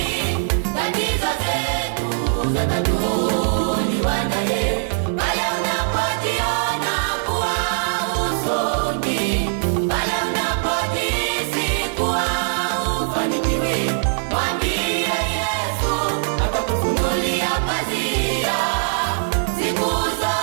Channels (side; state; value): left; silent; 65 dB below the other